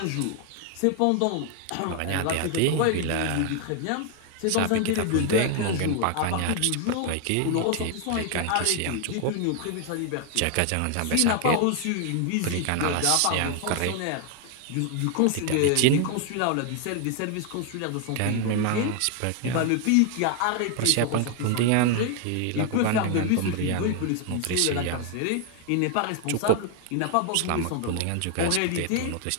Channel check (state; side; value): different; both; correlation 0.00